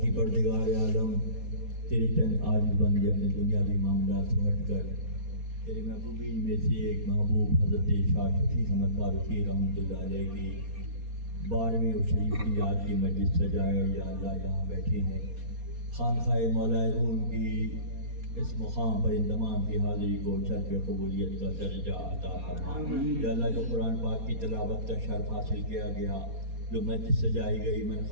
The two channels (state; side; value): late; left; 4.2 ms